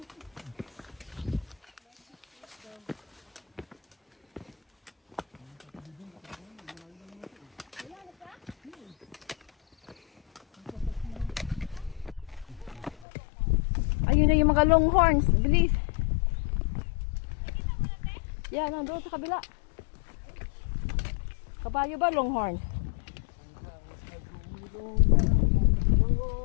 Ayun na yung mga longhorns. Bilis. Yan, nandoon sa kabila. Kabayo ba longhorn?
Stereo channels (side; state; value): right; drops out; at 13.1 s